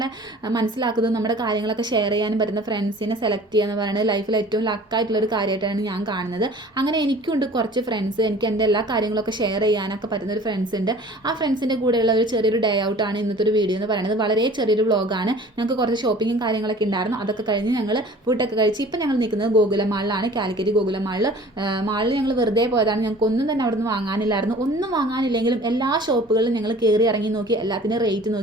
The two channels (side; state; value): both; normal; correlation 0.47